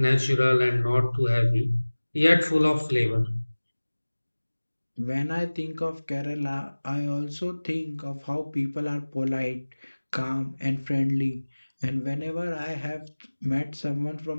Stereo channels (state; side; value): inverted; both; correlation -1.00